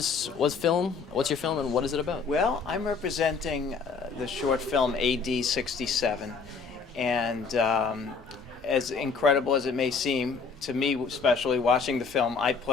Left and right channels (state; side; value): quieter; right; 5.1 dB